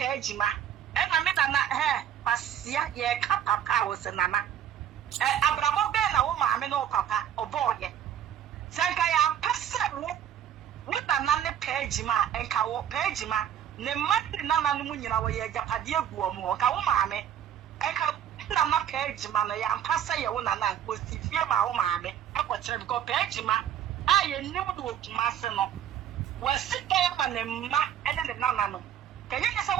ma ena me na pasia ye ka papa wo se nana abramo be na wo maame no papa oboye sanka ya pese wo na ne page ma enka wo page ma ne mati nana no munyina wo ye japade aguo mo ka wo maame enka na page ma na ya pese ye wo nana ko sifie ma wo maame akwokyere bi ko page ma aye nim do okuma se no wasika ya ma ne ma ene ne nana no kanya se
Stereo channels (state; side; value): quieter; left; 9.9 dB